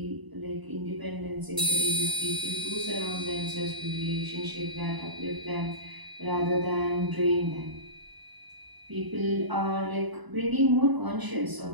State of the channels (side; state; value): left; late; 1.0 ms